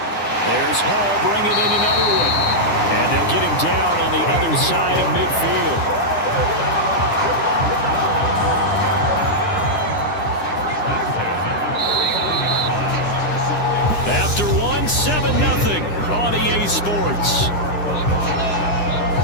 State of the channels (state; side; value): late; right; 9.9 ms